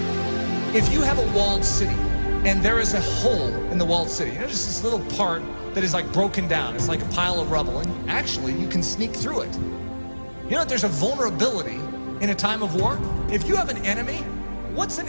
If you have a walled city and there is a hole in the walled city, just this little part that is like broken down, it's like a pile of rubble, and actually you can sneak through it. There's a vulnerability in a time of war. If you have an enemy, what's an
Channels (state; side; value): inverted; both; correlation -1.00